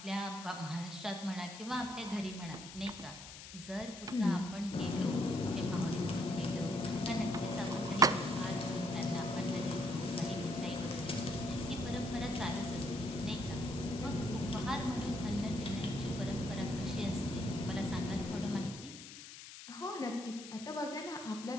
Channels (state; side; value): noise; left; hiss, 13 dB below the sound